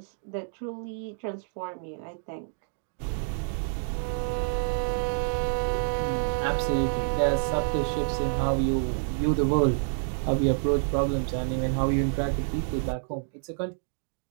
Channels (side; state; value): left; silent; digital silence